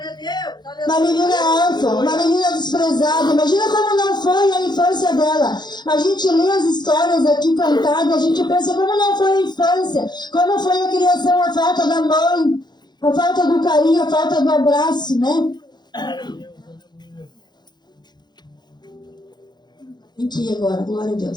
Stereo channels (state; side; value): late; right; 0.21 ms